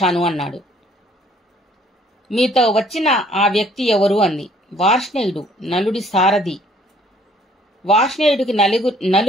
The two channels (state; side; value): normal; both; correlation 0.60